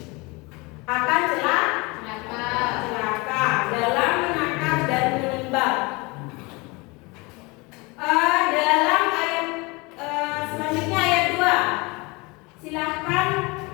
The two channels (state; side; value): quieter; right; 26.1 dB